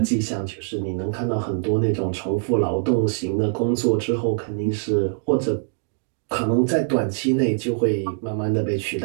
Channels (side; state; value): left; silent; digital silence